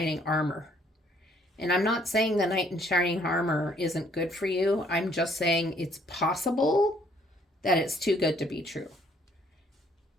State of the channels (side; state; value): both; normal; correlation 0.64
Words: armor? And I'm not saying the knight in shining armor isn't good for you. I'm just saying it's possible that it's too good to be true.